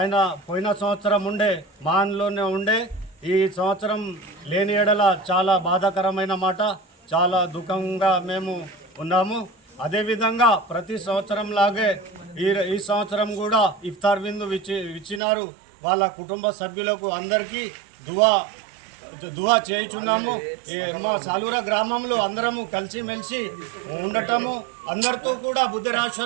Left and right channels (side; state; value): left; drops out; at 15.2 s